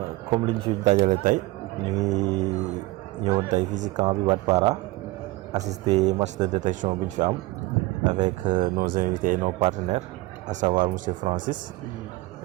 comme liñ fi dajale tey ñu ngi ñëwoon tey fii ci camp bi Wadpara assister match de détection bu ñu fi am avec nos invités et nos partenaires à savoir monsieur Francis.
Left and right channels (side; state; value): left; quieter; 19.9 dB